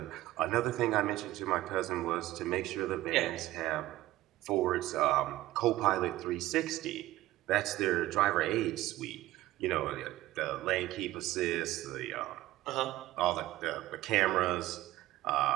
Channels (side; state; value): left; quieter; 15.9 dB